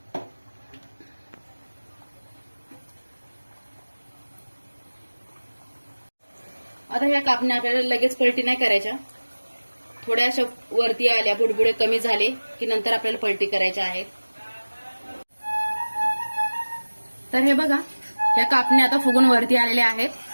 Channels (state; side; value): inverted; both; correlation -1.00